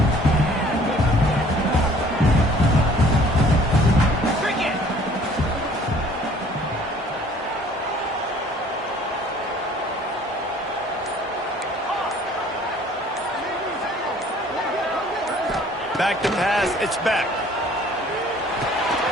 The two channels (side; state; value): both; normal; correlation 0.54